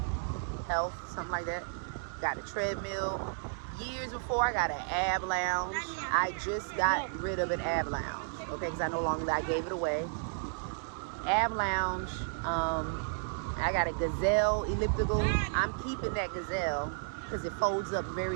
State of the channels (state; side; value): silent; left; digital silence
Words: Health, something like that. Got a treadmill. Years before, I got an ab lounge. I just got rid of an ab lounge, okay, because I no longer, I gave it away. Ab lounge. I got a Gazelle elliptical. I'm keeping that Gazelle because it folds up